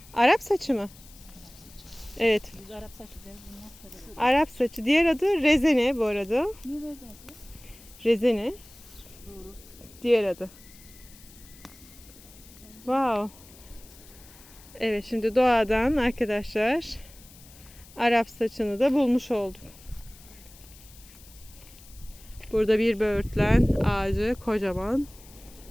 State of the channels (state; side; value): noise; left; hiss, 22 dB below the sound